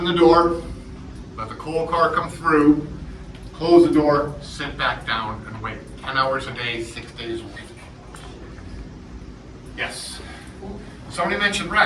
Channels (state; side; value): identical; both; correlation 1.00